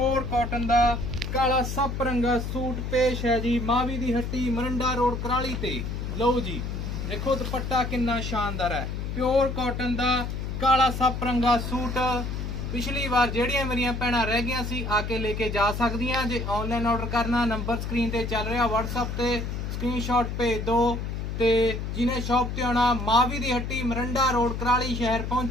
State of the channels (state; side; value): noise; left; hum, 4 dB below the sound